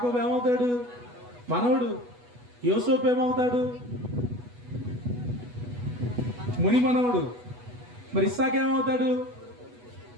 ఏమవుతాడు? మనవడు. యోసేపు ఏమవుతాడు? ముని మనవడు. మరి ఇస్సాకు ఏమవుతాడు?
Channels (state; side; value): late; left; 8.2 ms